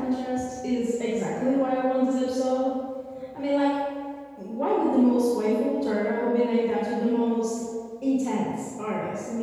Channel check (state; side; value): identical; both; correlation 1.00